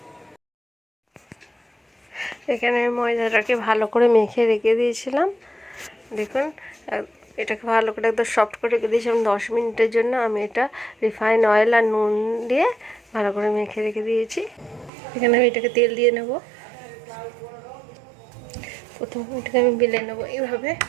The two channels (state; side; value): drops out; left; at 14.9 s